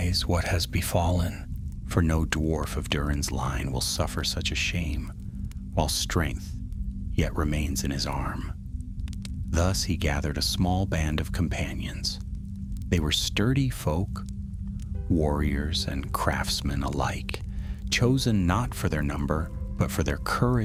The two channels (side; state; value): both; identical; correlation 1.00